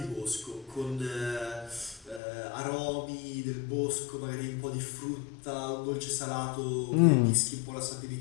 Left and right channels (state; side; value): drops out; right; at 2.2 s